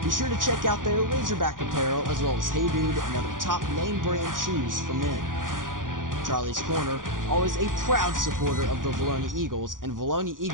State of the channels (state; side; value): late; left; 0.89 ms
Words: Be sure to check out their Razorback apparel as well as Hey Dude and other top name brand shoes for men. Charlie's Corner, always a proud supporter of the Vilonia Eagles and Vilonia